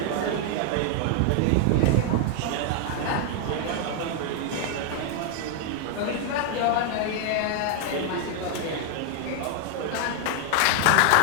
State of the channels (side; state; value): both; different; correlation 0.00